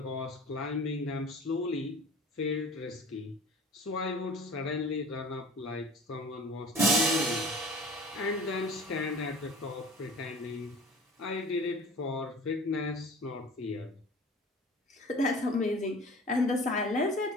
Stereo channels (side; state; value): both; normal; correlation 0.42